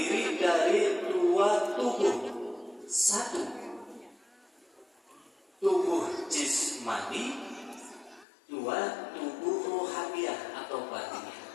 dari dua tubuh. Satu, tubuh jismani. Dua, tubuh rohaniah atau batiniah.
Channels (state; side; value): drops out; right; at 8.2 s